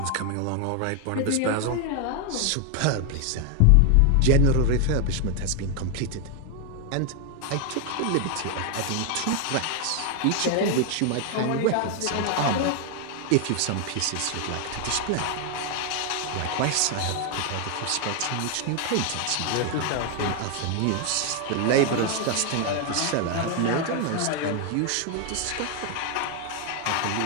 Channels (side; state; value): both; different; correlation 0.01